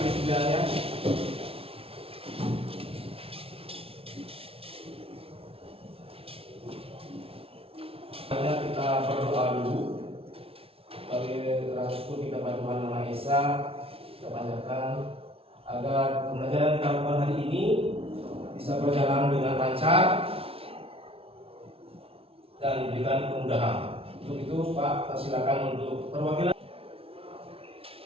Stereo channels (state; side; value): late; left; 0.27 ms